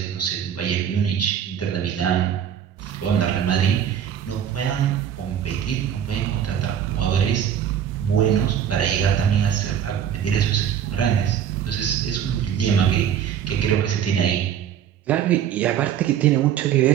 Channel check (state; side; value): quieter; left; 9.2 dB